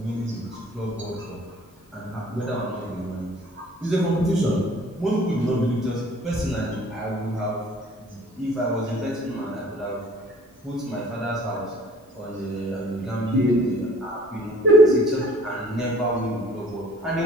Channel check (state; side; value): normal; both; correlation 0.53